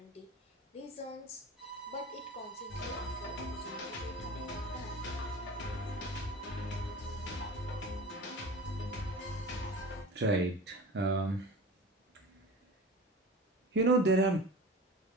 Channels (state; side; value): normal; both; correlation 0.35